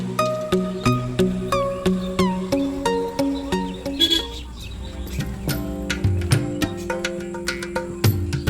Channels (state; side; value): identical; both; correlation 1.00